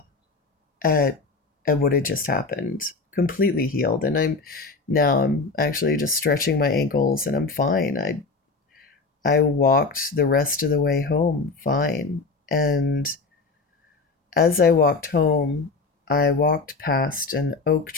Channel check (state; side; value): quieter; right; 4.0 dB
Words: at what had just happened. Completely healed, and I'm actually just stretching my ankles and I'm fine. I walked the rest of the way home fine. And as I walked home, I walked past an oak